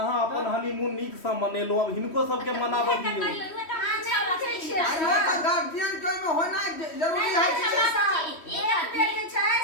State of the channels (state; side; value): late; right; 3.1 ms